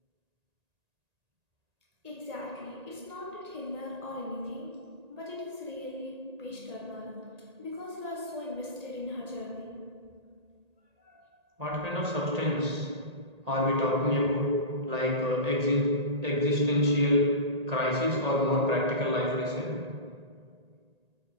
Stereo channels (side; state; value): left; late; 1.8 ms